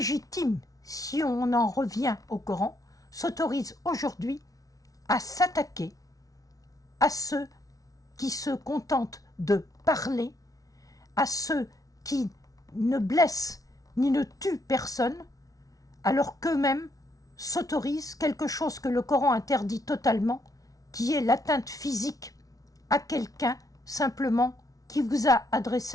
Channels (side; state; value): right; late; 0.18 ms